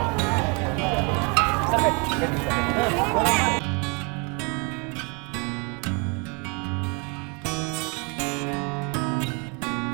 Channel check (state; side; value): quieter; left; 33.0 dB